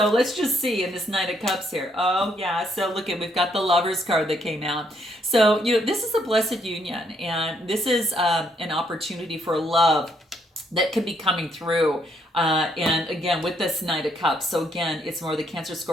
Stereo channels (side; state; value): both; normal; correlation 0.72